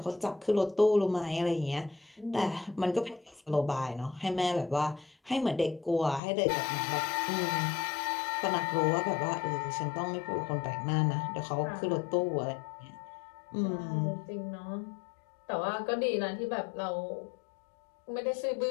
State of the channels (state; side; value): drops out; right; at 6.2 s